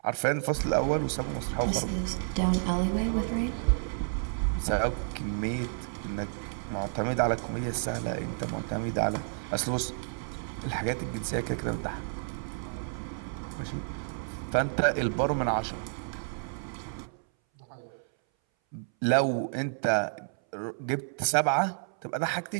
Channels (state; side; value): silent; left; 57 dB below the other